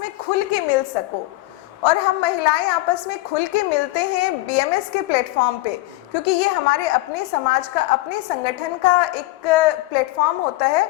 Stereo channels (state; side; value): quieter; right; 19.4 dB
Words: में खुल के मिल सको। और हम महिलाएं आपस में खुल के मिलते हैं बीएमएस के प्लेटफॉर्म पे, क्योंकि ये हमारे अपने समाज का, अपने संगठन का एक प्लेटफॉर्म होता